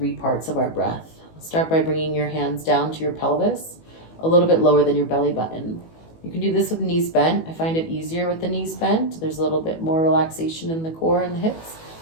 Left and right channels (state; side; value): late; right; 18 ms